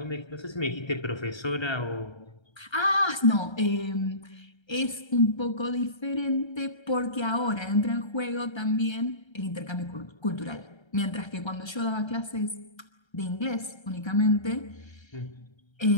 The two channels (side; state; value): right; late; 1.3 ms